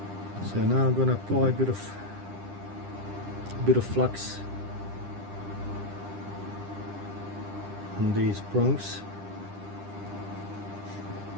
So now I'm gonna apply a bit of flux on these prongs.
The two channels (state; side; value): late; left; 10 ms